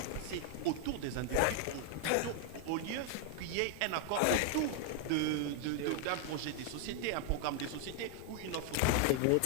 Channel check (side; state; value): both; different; correlation 0.00